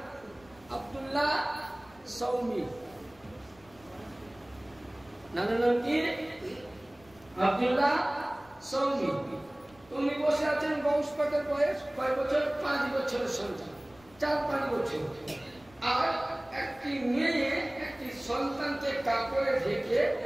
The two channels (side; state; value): left; noise; rumble, 27 dB below the sound